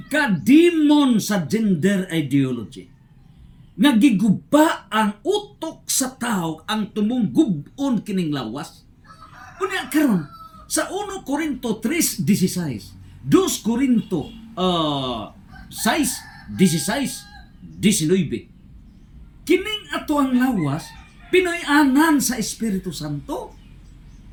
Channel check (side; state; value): both; identical; correlation 1.00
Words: kademon sa gender ideology nagiguba ang utok sa tao ang tumunggugon kining lawas. Unya karon sa 1 Corinto 3:16, 2 Corinto 6:16-19, kining ato ang lawas pinoy-anan sa Espiritu Santo.